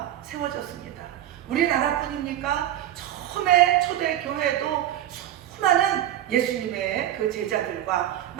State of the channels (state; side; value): quieter; left; 12.3 dB